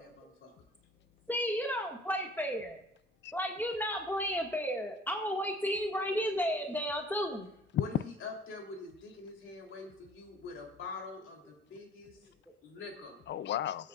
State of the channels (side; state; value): both; normal; correlation 0.50